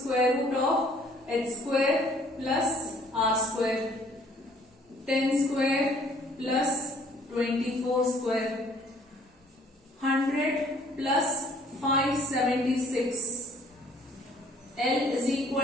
root of h square plus r square. 10 square plus 24 square. 100 plus 576. L is equal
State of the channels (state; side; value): normal; both; correlation 0.59